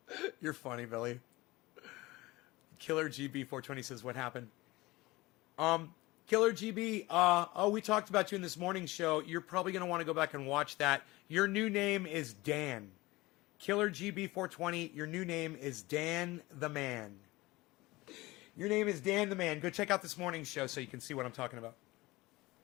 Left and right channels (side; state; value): right; quieter; 20.5 dB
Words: You're funny, Billy. Killer GB 420 says, what happened? Killer GB, we talked about you in this morning show. You're probably going to want to go back and watch that. Your new name is Dan. Killer GB 420, your new name is Dan the Man. Your name is Dan the Man. Go check out this morning's show so you can see what I'm talking about.